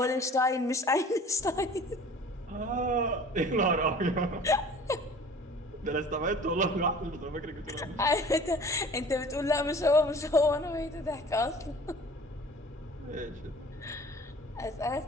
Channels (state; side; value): normal; both; correlation 0.46